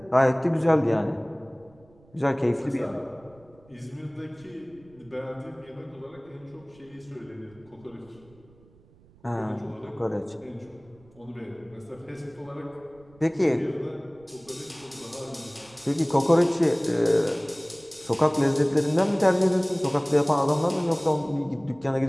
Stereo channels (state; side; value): noise; right; rumble, 28 dB below the sound